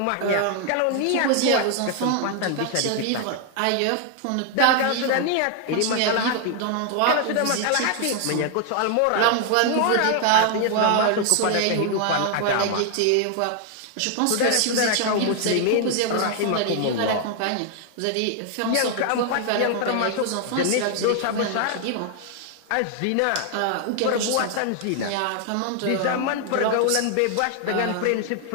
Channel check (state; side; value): different; both; correlation 0.00